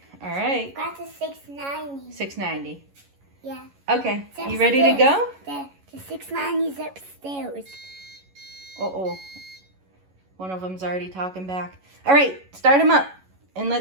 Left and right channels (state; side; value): late; left; 11 ms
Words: All right. Got the 690. 690. Yeah. Okay. It's You ready to go? The 690 is upstairs. Uh-oh. One of them's already talking back. All right. Start them up. And